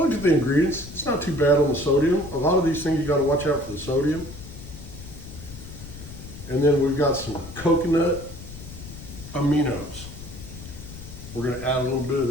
at the ingredients, it's not too bad on the sodium. A lot of these things you got to watch out for the sodium. And then we've got some coconut aminos. We're going to add a little bit of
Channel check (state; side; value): noise; left; rumble, 14 dB below the sound